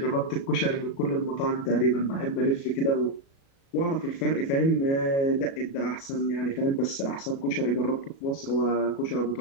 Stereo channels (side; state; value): right; late; 36 ms